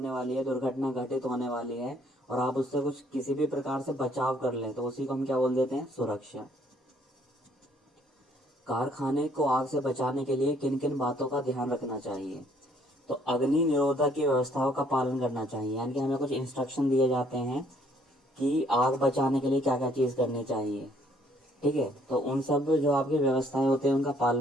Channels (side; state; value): both; normal; correlation 0.64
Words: वाली है, दुर्घटना घटित होने वाली है और आप उससे कुछ किसी भी प्रकार से बचाव कर लें, तो उसी को हम क्या बोल देते हैं, सुरक्षा। कारखाने को आग से बचाने के लिए किन किन बातों का ध्यान रखना चाहिए। तो अग्नि निरोधक की व्यवस्थाओं का पालन करना चाहिए, यानी कि हमें कुछ इंस्ट्रक्शन दिए जाते हैं कि आग बचाने के लिए क्या क्या चीज़ करनी चाहिए। ठीक है, तो उन सब जो आपकी व्यवस्थाएं होती हैं उनका